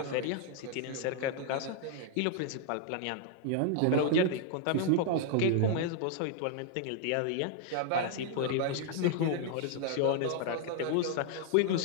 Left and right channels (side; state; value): both; different; correlation 0.00